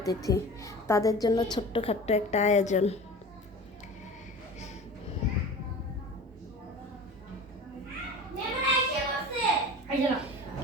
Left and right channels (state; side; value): normal; both; correlation 0.37